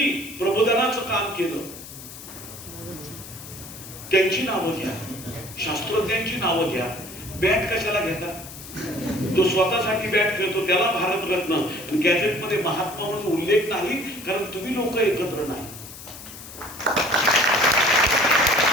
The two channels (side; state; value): left; noise; hiss, 14 dB below the sound